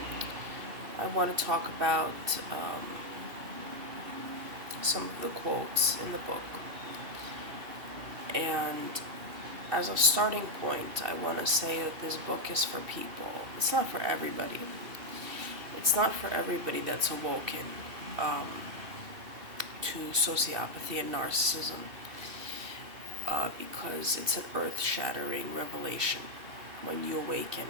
I want to talk about some of the quotes in the book. And as a starting point, I want to say that this book is for people. It's not for everybody. It's not for everybody that's awoken um, to sociopathy and narcissism because it's an earth-shattering revelation when you awaken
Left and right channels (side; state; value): left; late; 2.7 ms